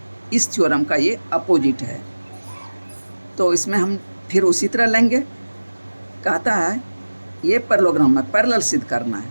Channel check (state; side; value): inverted; both; correlation -1.00